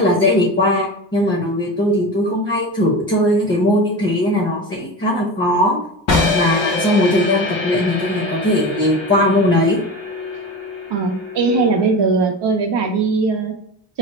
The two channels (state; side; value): normal; both; correlation 0.28